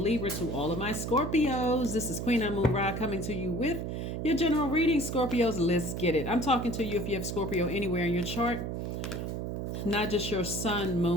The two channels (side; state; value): right; noise; hum, 4 dB below the sound